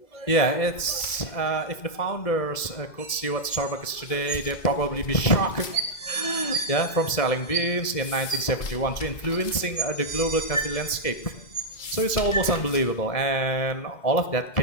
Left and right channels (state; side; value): late; right; 2.1 ms